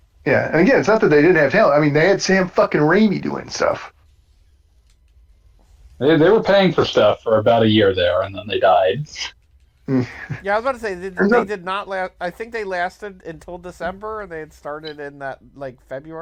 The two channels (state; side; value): identical; both; correlation 1.00